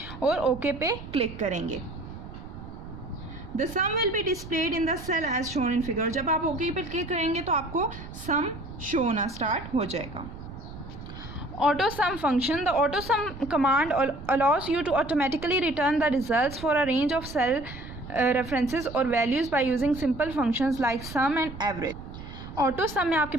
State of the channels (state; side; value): noise; right; rumble, 13 dB below the sound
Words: और ओके पे क्लिक करेंगे। The sum will be displayed in the cell as shown in figure. जब आप ओके पे क्लिक करेंगे तो आपको सम शो होना स्टार्ट हो जाएगा। Auto sum function. The auto sum command allows you to automatically return the results for a range of cell references और values by using simple functions like sum and average. Auto sum में आपके